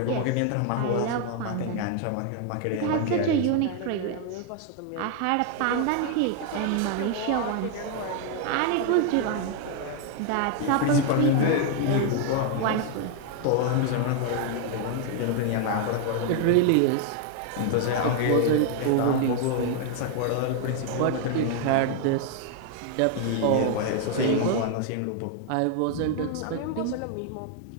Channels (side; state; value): both; different; correlation 0.00